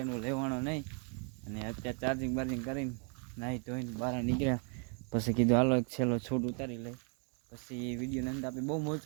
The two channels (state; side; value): quieter; left; 38.5 dB